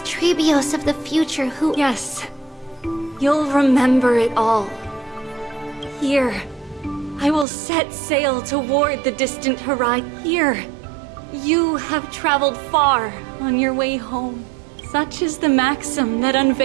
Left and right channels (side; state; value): left; drops out; at 7.5 s